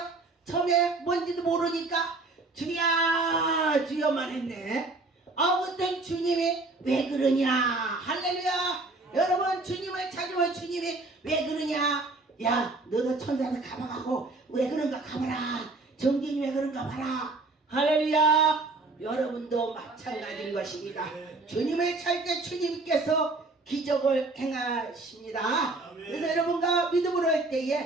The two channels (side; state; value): left; quieter; 3.3 dB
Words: 처음에 뭔지도 모르니까 주야 주여만 했네. 아무튼 주님이 왜 그러냐. 할렐루야. 여러분 주님을 찾으면 주님이 왜 그러냐. 너도 천사한테 가봐가고 왜 그런가 가봐라. 정경이 왜 그런가 봐라. 할렐루야. 여러분도 마찬가지인 것입니다. 주님을 찾을 때 주님께서 기적을 행하십니다. 그래서 여러분과 믿음으로 할